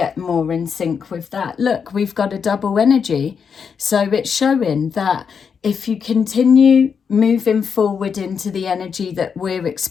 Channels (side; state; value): right; quieter; 6.4 dB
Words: more in sync with that. Look, we've got a double energy. So it's showing that if you continue moving forward into the energy that we're